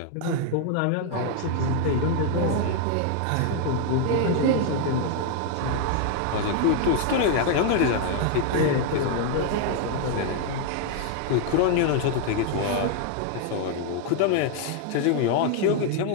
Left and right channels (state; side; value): different; both; correlation 0.00